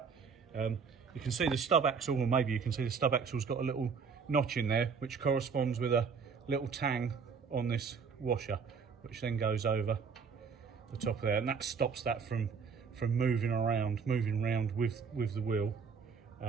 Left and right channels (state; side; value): quieter; left; 5.8 dB